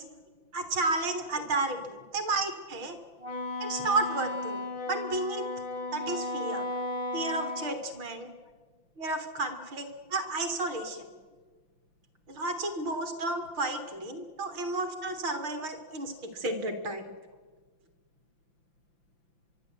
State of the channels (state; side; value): late; left; 5.9 ms